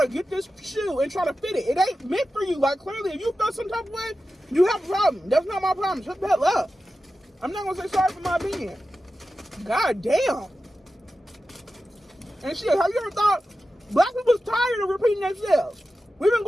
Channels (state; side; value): normal; both; correlation 0.93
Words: get this shoe and try to fit it. It ain't meant for you. Like, clearly, if you feel some type of way, you have a problem. That's not my problem. Shut the hell up. I'm not gonna say sorry for my opinion. God damn. And shit, have you ever thought black people's tired of repeating themselves? We've been